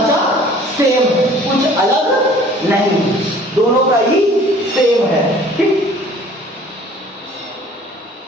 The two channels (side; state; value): both; normal; correlation 0.51